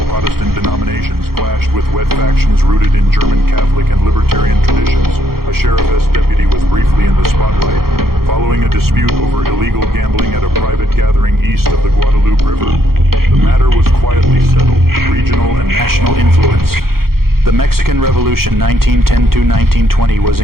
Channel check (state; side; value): late; left; 0.94 ms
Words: Protestant denominations, clashed with wet factions rooted in German Catholic and libertarian traditions. A sheriff's deputy was briefly in the spotlight, following a dispute over illegal gambling at a private gathering east of the Guadalupe River. The matter was quietly settled. Regional and national influence. The Mexican Revolution 1910–1920 was